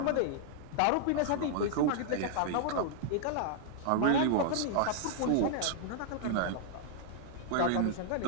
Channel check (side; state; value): both; different; correlation -0.01